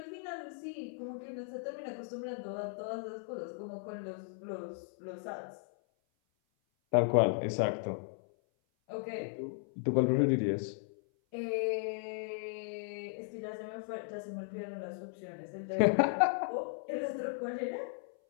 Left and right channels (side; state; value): right; silent; 54 dB below the other